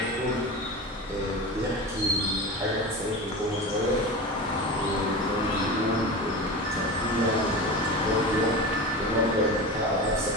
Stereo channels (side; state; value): both; normal; correlation 0.27